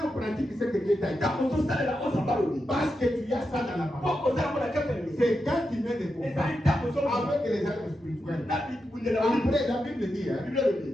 pratique ce que Dieu t'a dit, parce que tu as ça dans la parole, c'est quand tu mets des combats avec les armes spirituelles. Après, la Bible dit,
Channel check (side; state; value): both; normal; correlation 0.87